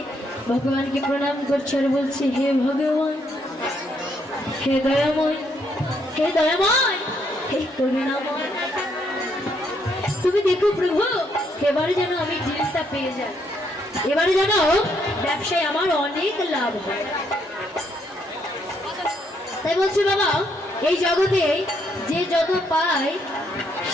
ভগবানকে প্রণাম করছে আর বলছে, হে ভগবান, হে দয়াময়, হে দয়াময়, হে করুণাময়, তুমি দেখো প্রভু, এবারে যেন আমি ডিলটা পেয়ে যাই, এবারে যেন ব্যবসায় আমার অনেক লাভ হয়। তাই বলছি বাবা, এই জগতে যে যত পায়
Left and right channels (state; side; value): normal; both; correlation 0.73